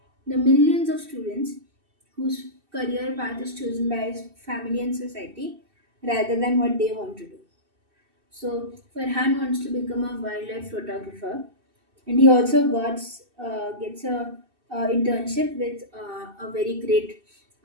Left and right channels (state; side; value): late; left; 2.6 ms